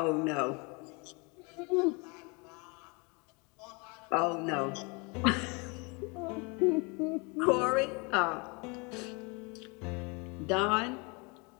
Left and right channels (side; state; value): right; quieter; 30.2 dB